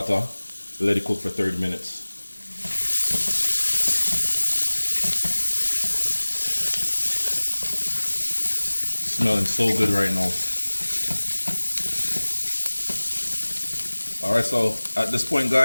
Let it cook for 30 minutes. Smelling so good right now. All right, so at this point,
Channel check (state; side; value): inverted; both; correlation -1.00